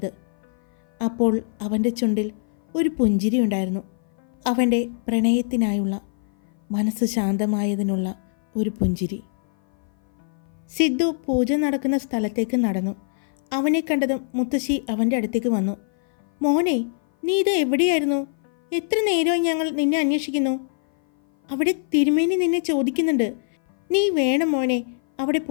അപ്പോൾ അവൻ്റെ ചുണ്ടിൽ ഒരു പുഞ്ചിരി ഉണ്ടായിരുന്നു. അവൻ്റെ പ്രണയത്തിനായുള്ള, മനസ്സ് ശാന്തമായതിനുള്ള ഒരു പുഞ്ചിരി. സിദ്ധു പൂജ നടക്കുന്ന സ്ഥലത്തേക്ക് നടന്നു. അവനെ കണ്ടതും മുത്തശ്ശി അവൻ്റെ അടുത്തേക്ക് വന്നു. മോനെ, നീ ഇത് എവിടെയായിരുന്നു? എത്ര നേരമായി ഞങ്ങൾ നിന്നെ അന്വേഷിക്കുന്നു. അവിടെ തിരുമേനി നിന്നെ ചോദിക്കുന്നുണ്ട്. നീ വേണം മോനെ അവിടെ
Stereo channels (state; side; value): silent; right; 56 dB below the other